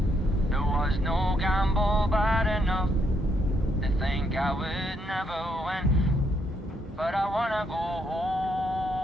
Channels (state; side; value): normal; both; correlation 0.74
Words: There was no gamble bad enough to think I would never win. But I wanna go